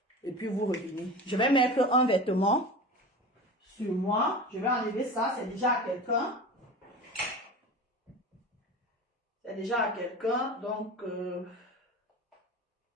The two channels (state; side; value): normal; both; correlation 0.32